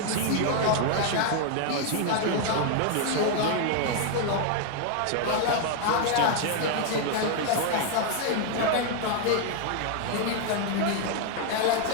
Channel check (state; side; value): different; both; correlation 0.00